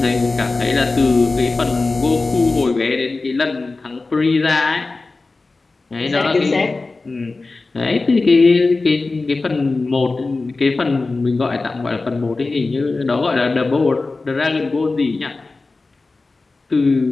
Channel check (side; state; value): right; quieter; 3.6 dB